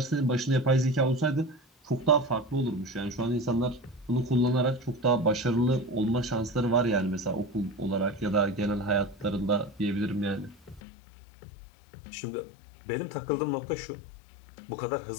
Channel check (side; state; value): right; drops out; at 10.8 s